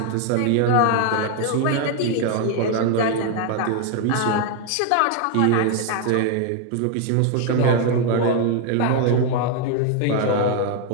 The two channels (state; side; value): different; both; correlation 0.01